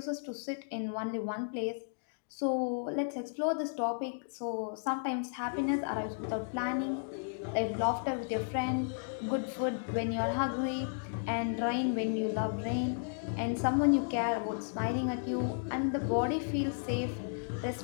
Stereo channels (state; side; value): silent; right; digital silence